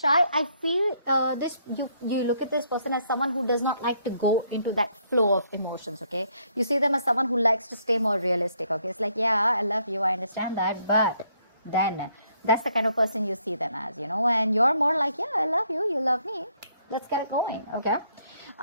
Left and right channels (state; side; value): inverted; both; correlation -0.70